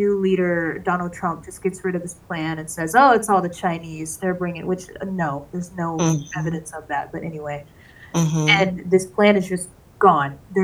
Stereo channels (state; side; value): identical; both; correlation 1.00